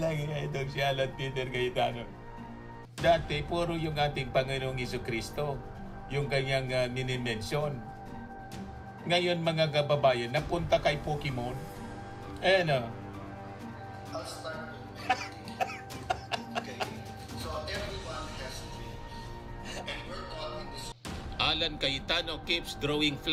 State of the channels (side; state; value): both; identical; correlation 1.00